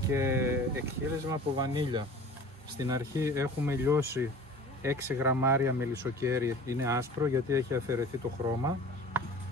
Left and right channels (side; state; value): both; normal; correlation 0.43